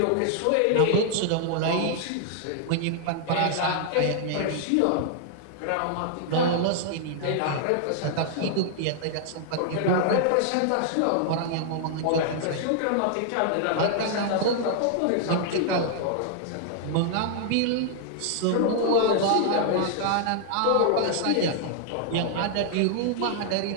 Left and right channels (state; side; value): different; both; correlation -0.01